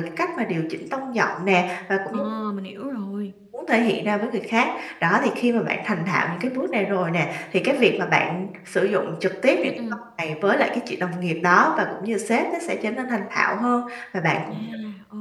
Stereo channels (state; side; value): identical; both; correlation 1.00